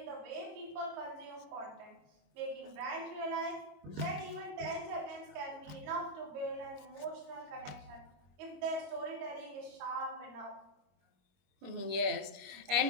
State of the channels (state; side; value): late; left; 21 ms